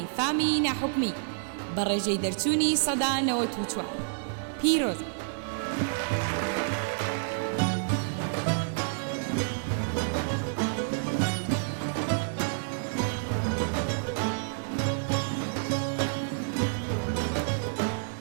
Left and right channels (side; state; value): left; silent; 58 dB below the other